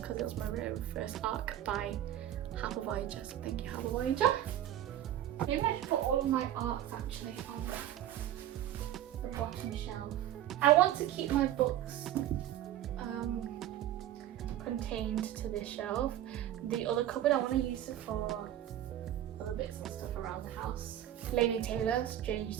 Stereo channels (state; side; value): quieter; left; 12.1 dB